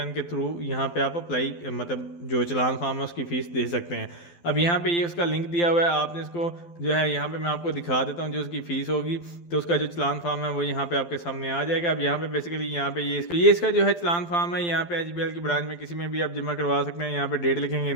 के थ्रू यहाँ पे आप अप्लाई मतलब जो चलान फार्म है उसकी फ़ीस दे सकते हैं। अब यहाँ पे ये उसका लिंक दिया हुआ है, आपने इसको जो है यहाँ पे मैं आपको दिखा देता हूँ जो उसकी फ़ीस होगी। तो उसका जो चलान फार्म है वो यहाँ पे आपके सामने आ जाएगा। अब यहाँ पे बेसिकली यहाँ पे ये इसका जो है चलान फार्म है, यहाँ पे एचबीएल की ब्रांच में किसी में भी आप जमा करवा सकते हैं। यहाँ पे डेट लिखेंगे,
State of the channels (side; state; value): right; late; 12 ms